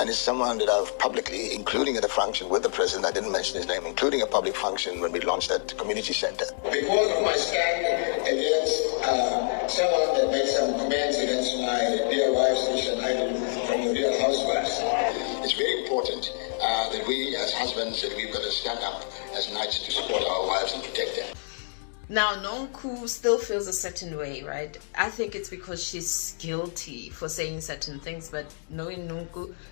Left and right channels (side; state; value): right; silent; digital silence